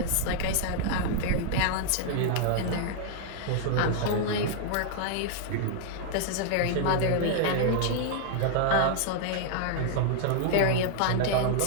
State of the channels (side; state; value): both; different; correlation -0.01